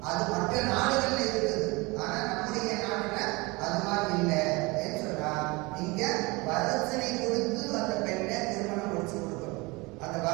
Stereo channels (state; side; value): quieter; left; 24.9 dB